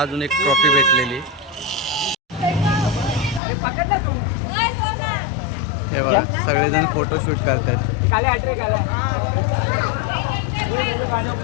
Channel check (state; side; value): drops out; right; at 3.4 s